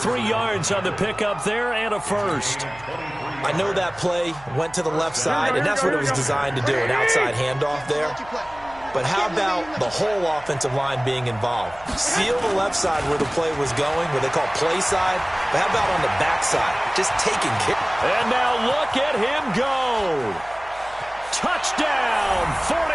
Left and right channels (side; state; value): right; noise; hum, 22 dB below the sound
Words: yards on the pickup there and a first. I know that play went to the left side, and that's what it was designed to do, an outside handoff there. but how about the whole offensive line being involved? Seal the left side where the play was going, where they call play side, but how about on the back side? Just taking care. And now look at him go. Touchdown,